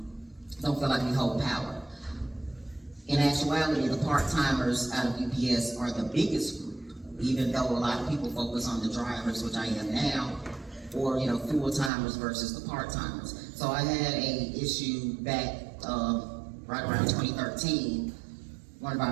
don't feel like we hold power. In actuality, the part-timers out of UPS are the biggest group, even though a lot of people focus on the drivers, which I am now, or full-timers versus the part-timers. So I had a issue back right around 2013. One of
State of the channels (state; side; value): drops out; left; at 11.9 s